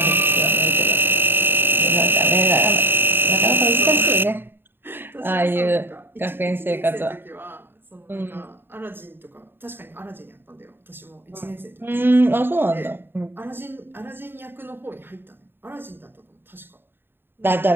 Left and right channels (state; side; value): late; left; 0.10 ms